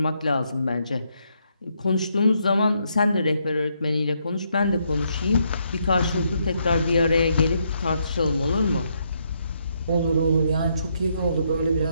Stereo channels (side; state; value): both; inverted; correlation -0.76